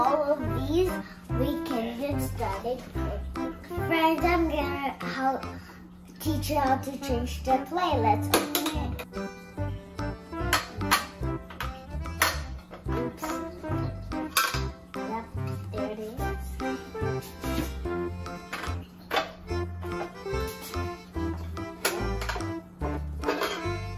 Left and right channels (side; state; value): both; identical; correlation 1.00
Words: of these, we can get started. Friends, I'm gonna teach you how to change the plate. Let's open it. Oops. Yep, there it is.